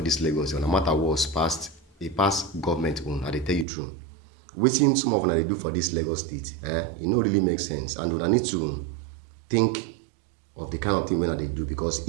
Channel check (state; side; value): drops out; left; at 3.7 s